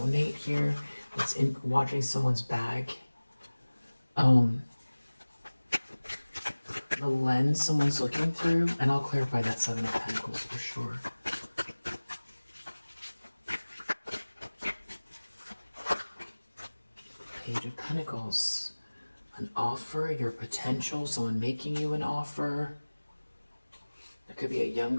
here, that's watching someone's bag. The lens someone's looking through, and I'll clarify that Seven of Pentacles for sure. Page of Pentacles. An offer, your potential, someone making you an offer. There could be a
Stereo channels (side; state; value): both; inverted; correlation -1.00